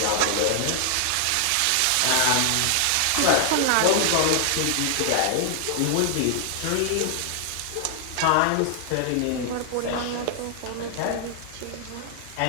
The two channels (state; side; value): different; both; correlation 0.00